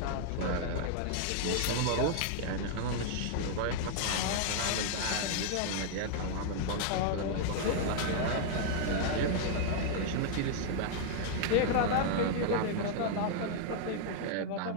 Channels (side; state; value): both; different; correlation 0.00